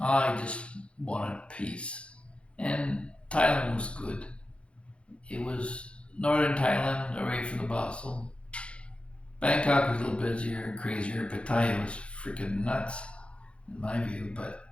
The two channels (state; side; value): late; right; 0.059 ms